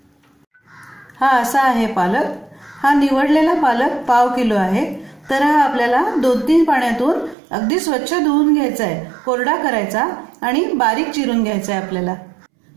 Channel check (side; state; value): left; drops out; at 7.4 s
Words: हा असा आहे पालक। हा निवडलेला पालक पाव किलो आहे। तर हा आपल्याला 2-3 पाण्यातून अगदी स्वच्छ धुवून घ्यायचा आहे, कोरडा करायचा आणि बारीक चिरून घ्यायचा आहे आपल्याला।